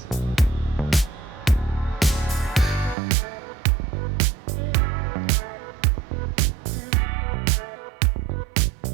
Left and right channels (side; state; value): left; drops out; at 3.0 s